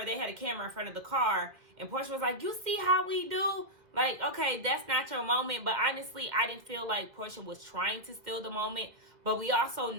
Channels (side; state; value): left; late; 2.0 ms